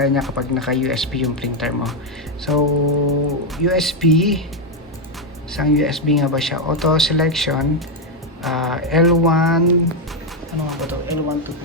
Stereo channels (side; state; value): both; normal; correlation 0.03